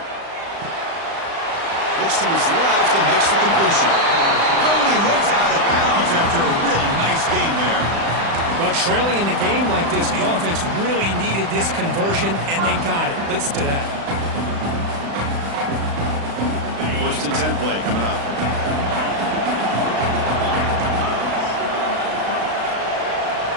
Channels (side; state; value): left; late; 35 ms